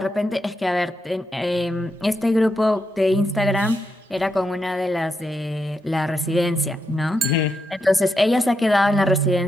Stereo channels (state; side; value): normal; both; correlation 0.84